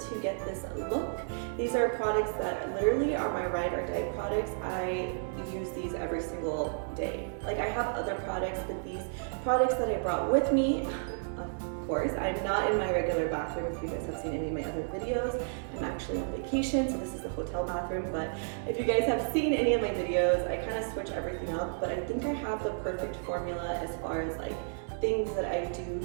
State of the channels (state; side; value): silent; left; digital silence